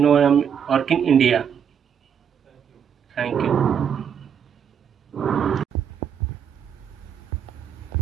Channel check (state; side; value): quieter; left; 7.9 dB